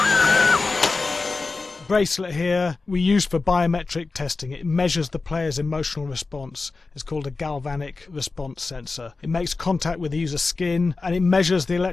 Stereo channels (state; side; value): quieter; right; 3.9 dB